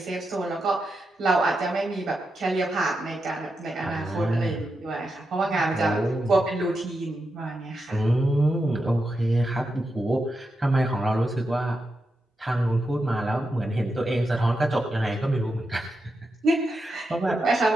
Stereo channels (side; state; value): both; normal; correlation 0.87